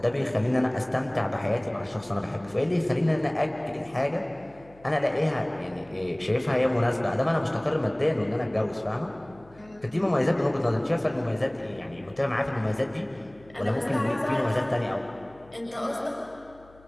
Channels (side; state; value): left; noise; hum, 26 dB below the sound